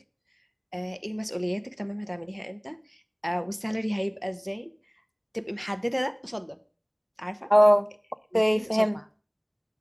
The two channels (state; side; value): identical; both; correlation 1.00